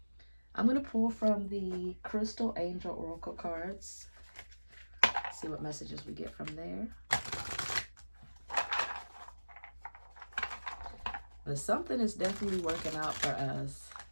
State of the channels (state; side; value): inverted; both; correlation -1.00